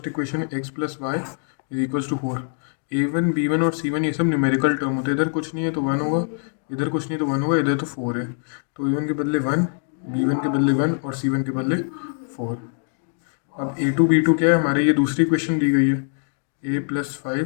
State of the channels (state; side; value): silent; right; 61 dB below the other